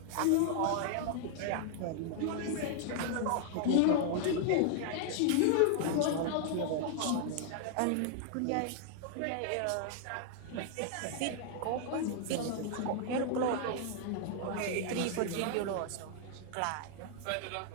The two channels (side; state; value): both; different; correlation 0.00